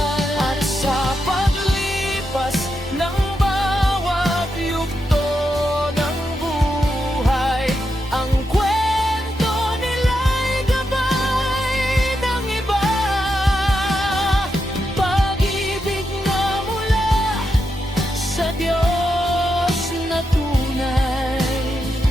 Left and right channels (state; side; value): normal; both; correlation 0.85